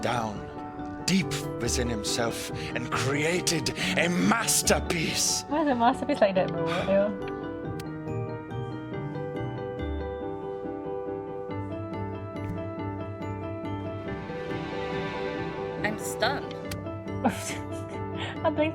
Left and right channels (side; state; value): both; identical; correlation 1.00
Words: down deep within himself and created a masterpiece. Why is a masterpiece like that, bro? Ew. I'm stunned. I'm playing